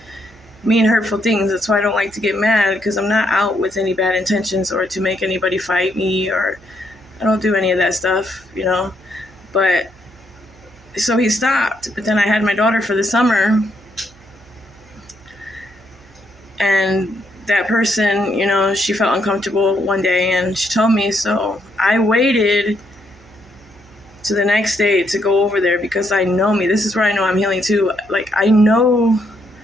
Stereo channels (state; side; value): noise; right; hum, 27 dB below the sound